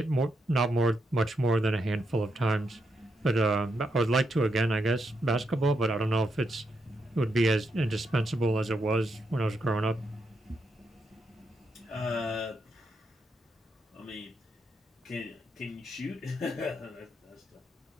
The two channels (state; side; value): normal; both; correlation 0.81